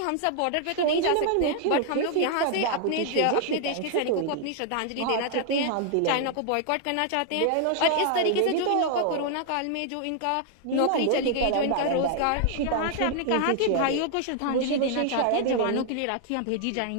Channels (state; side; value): different; both; correlation 0.00